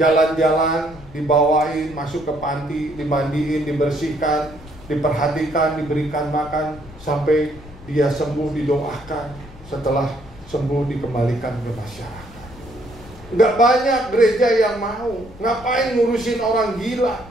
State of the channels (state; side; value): noise; left; rumble, 19 dB below the sound